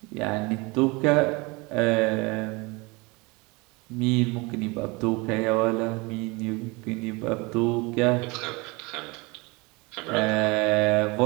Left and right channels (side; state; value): left; quieter; 26.3 dB